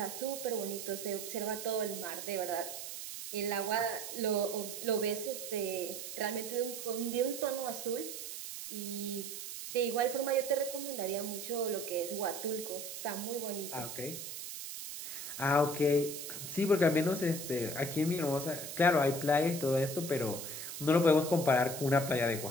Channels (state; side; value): noise; right; hiss, 8 dB below the sound